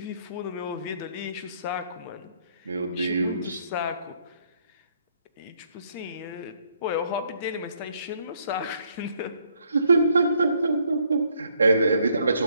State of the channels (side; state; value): both; inverted; correlation -0.68